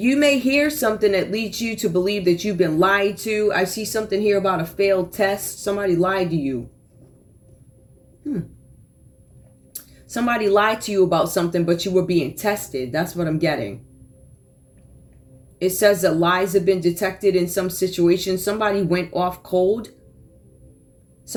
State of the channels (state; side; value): identical; both; correlation 1.00